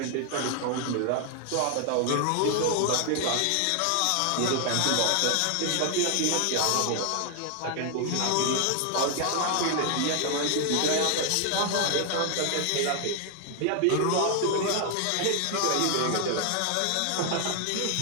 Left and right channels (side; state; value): both; different; correlation 0.00